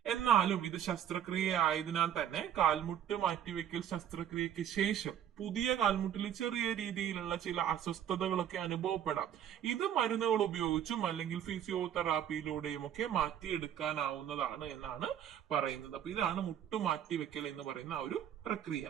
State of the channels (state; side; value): quieter; left; 9.9 dB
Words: എന്നാലും ഇത് ശസ്ത്രക്രിയ ആയതിനാൽ തന്നെ കാൽമുട്ട് മാറ്റിവെക്കൽ ശസ്ത്രക്രിയക്ക് ശേഷം പുതിയ കാൽമുട്ടിൽ ചെറിയ രീതിയിലുള്ള ചില അസ്വസ്ഥതകളൊക്കെ അനുഭവപ്പെടാം. ഇത് മരുന്നുകൾ ഉപയോഗിച്ചും അല്ലെങ്കിൽ ഫിസിയോതെറാപ്പിയിലൂടെയും ഒക്കെ മാറ്റിയെടുക്കാനാവുന്നതാണ് എന്നാണ് പറയുന്നത്. അപ്പൊ ഇതാണ് മുട്ടുമാറ്റിവെക്കൽ എന്ന് പറയുന്ന ഒരു പ്രക്രിയ.